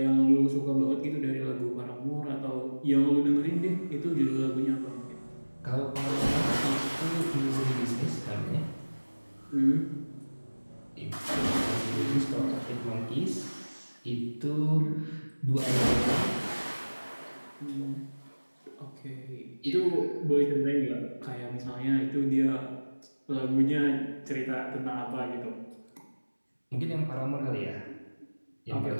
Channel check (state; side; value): inverted; both; correlation -1.00